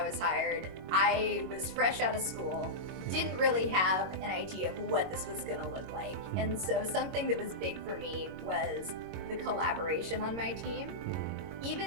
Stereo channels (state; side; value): late; left; 22 ms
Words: was hired, I was fresh out of school, didn't really have an idea of what this was going to look like. And so, something that was big for me was the collaboration on my team.